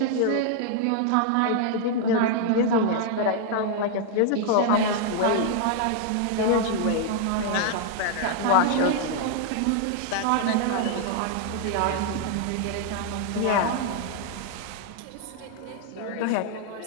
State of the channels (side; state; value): both; different; correlation 0.00